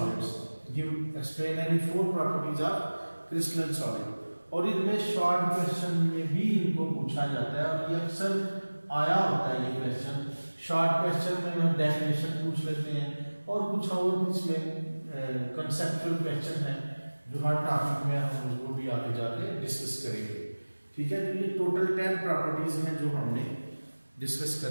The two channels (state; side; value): inverted; both; correlation -1.00